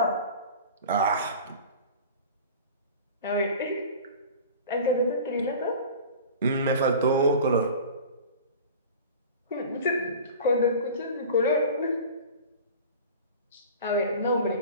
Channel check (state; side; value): inverted; both; correlation -0.38